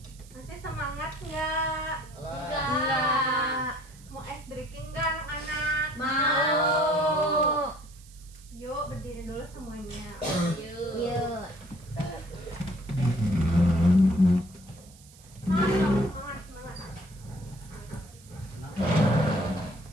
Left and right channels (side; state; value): right; noise; hiss, 24 dB below the sound